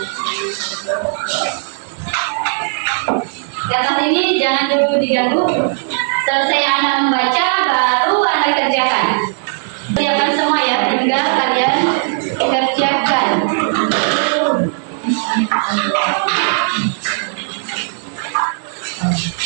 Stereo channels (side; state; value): left; silent; digital silence